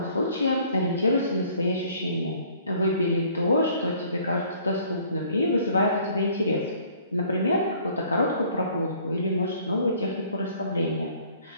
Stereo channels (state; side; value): inverted; both; correlation -0.57